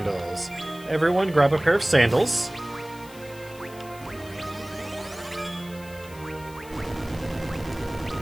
Everyone grab a pair of sandals.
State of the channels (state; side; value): noise; left; hiss, 20 dB below the sound